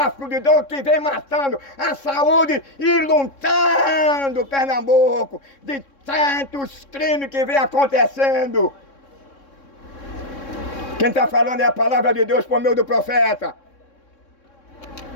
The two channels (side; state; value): right; late; 3.6 ms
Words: de drogas que vem matando a saúde e luntando Pernambuco de tantos crimes que vem acontecendo. Quem está falando é a palavra de Deus por meio do profeta.